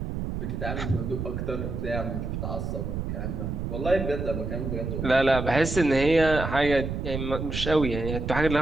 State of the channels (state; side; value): noise; right; rumble, 4 dB below the sound